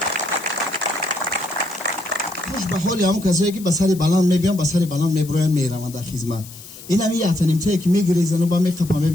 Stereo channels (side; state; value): left; noise; hiss, 17 dB below the sound